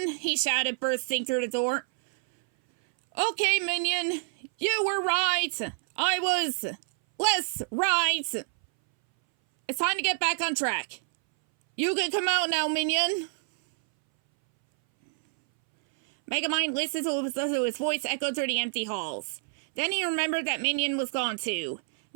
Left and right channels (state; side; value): silent; left; 60 dB below the other